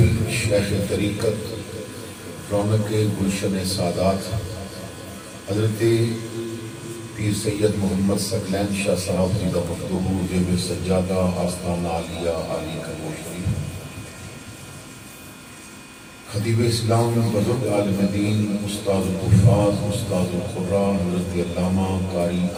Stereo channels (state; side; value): identical; both; correlation 1.00